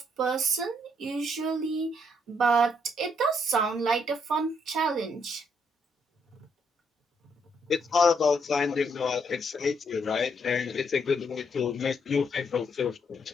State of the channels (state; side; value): normal; both; correlation 0.73